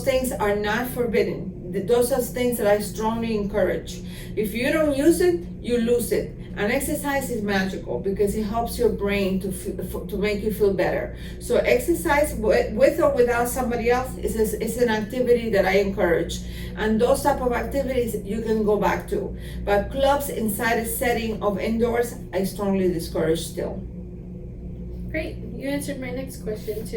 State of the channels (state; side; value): identical; both; correlation 1.00